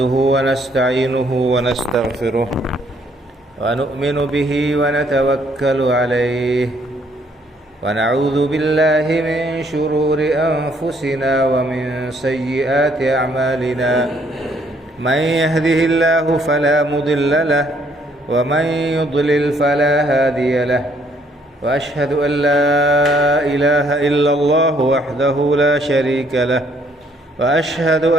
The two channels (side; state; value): both; normal; correlation 0.66